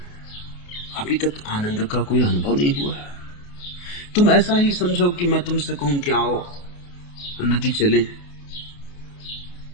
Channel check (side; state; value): right; late; 28 ms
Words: अभी तक आनंद का कोई अनुभव नहीं हुआ। तुम ऐसा ही समझो कि मैं तुमसे कहूं कि आओ नदी चले,